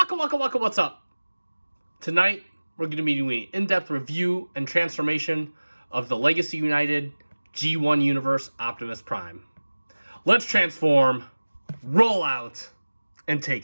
What's up? Tonight, we're going to be doing an in-depth review and transformation of the Legacy United G1 Universe Optimus Prime. Let's transform, roll out, and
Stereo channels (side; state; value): both; inverted; correlation -1.00